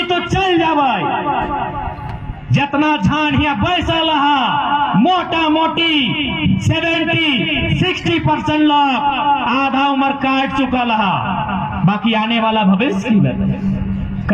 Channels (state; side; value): identical; both; correlation 1.00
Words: तो चल जावाई जितना झानिया बैसा लहा मोटा मोटी 70-60% लोग आधा उम्र काट चुका लहा, बाकी आने वाला भविष्य की